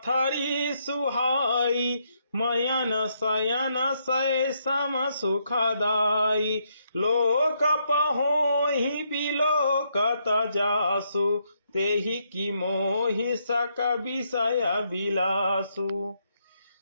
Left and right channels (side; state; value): both; inverted; correlation -0.76